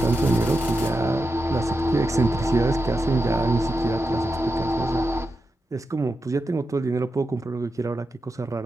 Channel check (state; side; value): normal; both; correlation 0.89